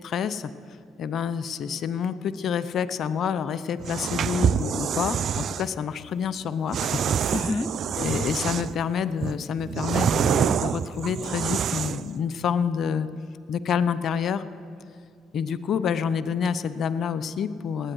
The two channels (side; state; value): both; normal; correlation 0.66